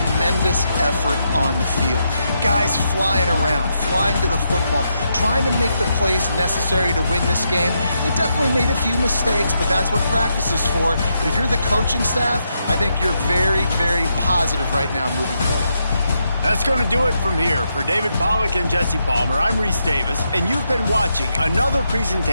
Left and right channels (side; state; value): both; inverted; correlation -0.81